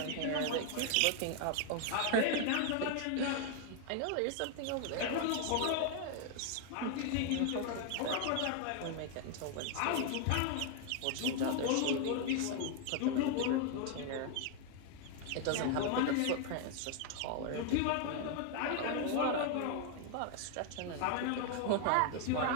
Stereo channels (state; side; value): different; both; correlation 0.00